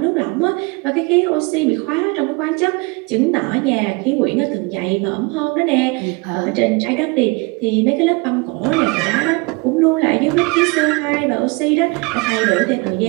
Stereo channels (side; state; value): left; quieter; 28.6 dB